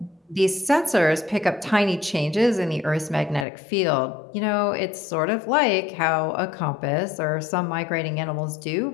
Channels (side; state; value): right; drops out; at 3.5 s